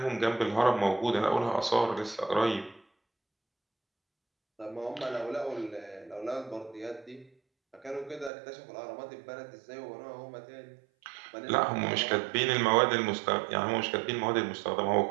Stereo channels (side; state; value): left; drops out; at 8.3 s